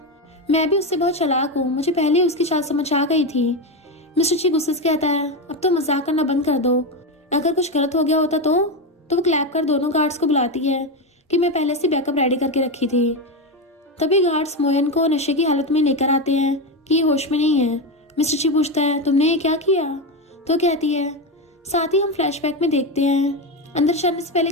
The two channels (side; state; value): both; normal; correlation 0.12